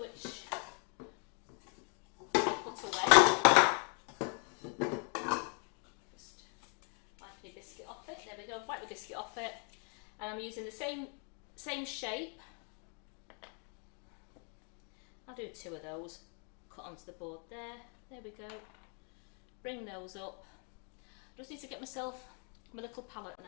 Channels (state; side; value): quieter; right; 39.3 dB